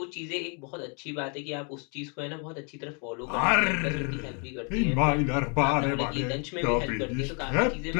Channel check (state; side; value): quieter; right; 37.0 dB